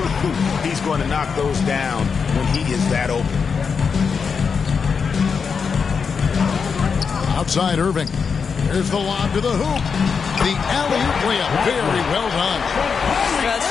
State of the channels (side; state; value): right; quieter; 5.8 dB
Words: he's going to knock those down when he is that open. Outside Irving. Here's the lob to the hoop. The alley-oop layup. Very well done.